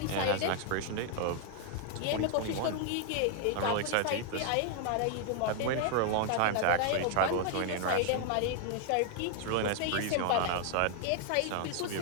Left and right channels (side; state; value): both; different; correlation 0.00